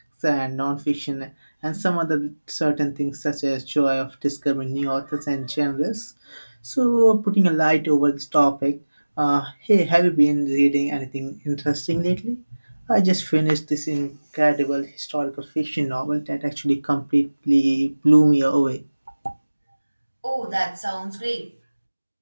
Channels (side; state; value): both; inverted; correlation -1.00